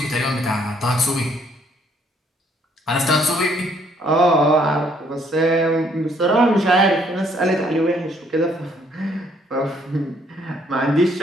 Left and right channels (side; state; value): both; normal; correlation 0.66